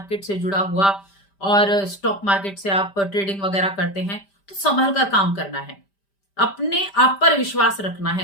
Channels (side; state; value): right; late; 5.1 ms